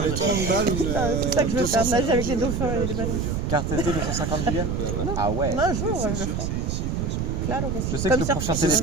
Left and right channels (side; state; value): right; noise; rumble, 1 dB below the sound